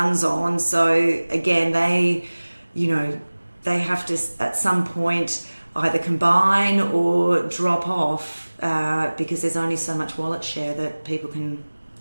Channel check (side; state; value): both; inverted; correlation -1.00